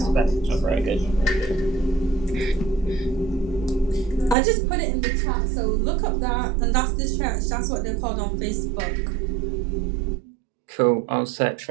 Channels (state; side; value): drops out; left; at 4.4 s